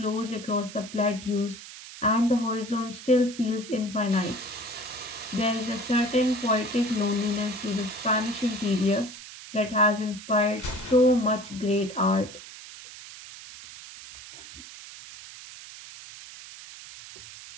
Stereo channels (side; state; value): right; noise; hiss, 15 dB below the sound